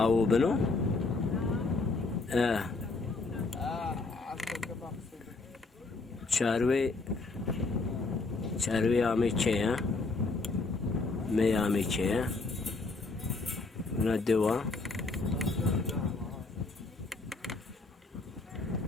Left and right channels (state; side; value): quieter; right; 3.6 dB